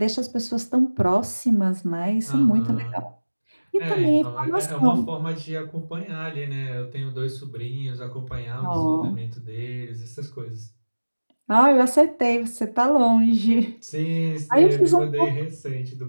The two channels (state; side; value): inverted; both; correlation -1.00